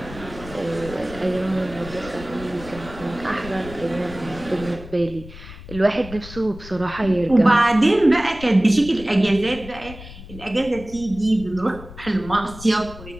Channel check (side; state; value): left; noise; rumble, 15 dB below the sound